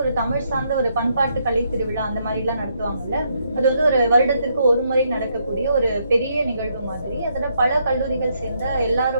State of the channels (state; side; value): inverted; both; correlation -0.75